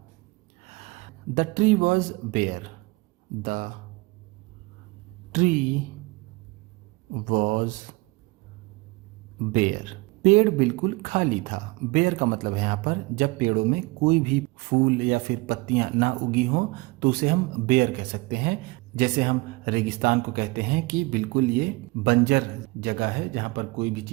The tree was bare, the tree was bare, पेड़ बिल्कुल खाली था। बेयर का मतलब है यहाँ पर जब पेड़ों में कोई भी फूल या फिर पत्तियां ना उगी हों तो उसे हम बेयर कह सकते हैं। जैसे हम रेगिस्तान को कहते हैं कि बिल्कुल ये बंजर जगह है जहाँ पर कोई भी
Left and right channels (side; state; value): left; quieter; 24.5 dB